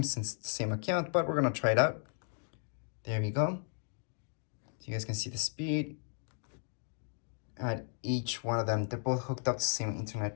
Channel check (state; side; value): silent; right; 54 dB below the other